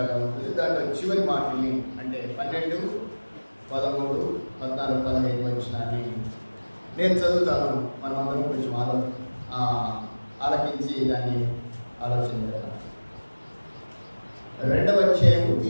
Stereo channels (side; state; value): both; inverted; correlation -1.00